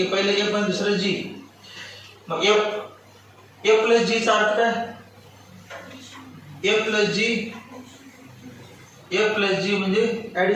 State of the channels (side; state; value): both; identical; correlation 1.00